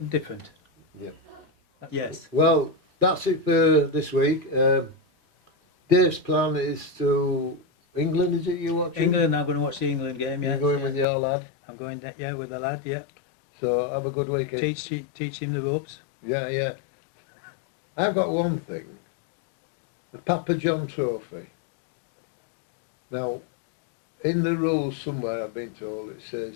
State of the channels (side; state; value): right; drops out; at 11.1 s